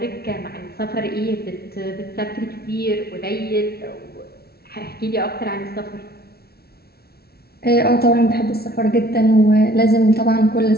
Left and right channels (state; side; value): late; right; 0.45 ms